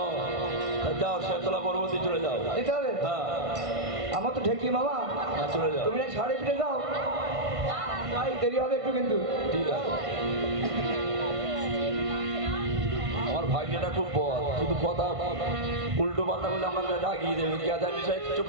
যাও শেতলা পর্বতে চলে যাও। যেতে হবে? হ্যাঁ আমার তো ঢেকি মামা, হ্যাঁ, চলে যাও। তুমি না সাড়ে ফিরে যাও, ভাই দেরি হবে একটু কিন্তু। ঠিক আছে। আমার ভাগ্যটা খুব বদ, শুধু কথা উল্টো পাল্টা বলে আমাকে রাগিয়ে দেবে। কে জানি সাহেব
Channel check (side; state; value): left; late; 1.5 ms